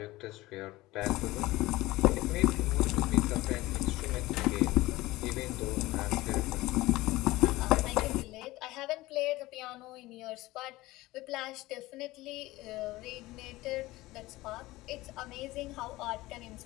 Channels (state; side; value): quieter; right; 18.9 dB